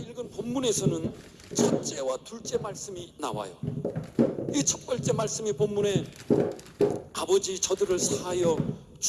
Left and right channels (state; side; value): identical; both; correlation 1.00